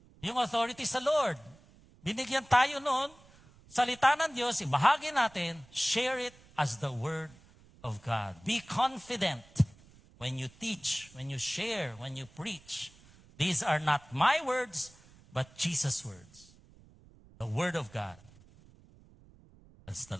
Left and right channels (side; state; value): right; noise; rumble, 25 dB below the sound